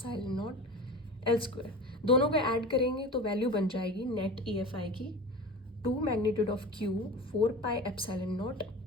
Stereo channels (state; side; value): normal; both; correlation 0.33